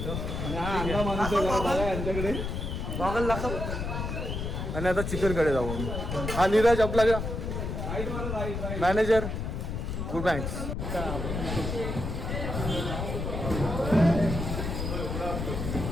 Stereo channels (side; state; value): left; noise; rumble, 3 dB below the sound